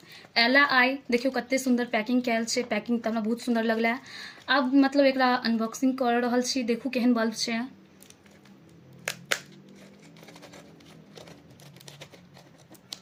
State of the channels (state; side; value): identical; both; correlation 1.00